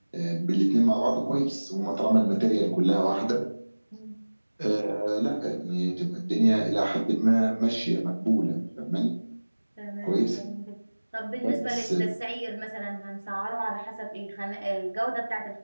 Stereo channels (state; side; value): inverted; both; correlation -1.00